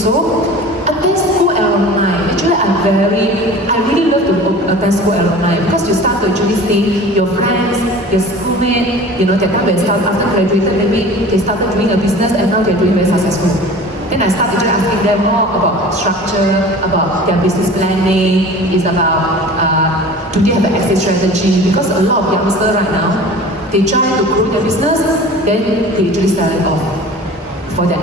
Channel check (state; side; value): normal; both; correlation 0.40